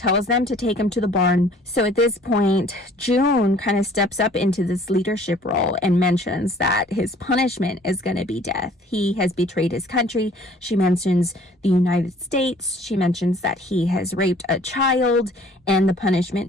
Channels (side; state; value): both; normal; correlation 0.54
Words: them to take him to the barn. So at this point, June kind of steps up into this leadership role and mentions that his punishment is going to be death. He has betrayed his country. She mentions the United States. She mentions that he has raped a child, and the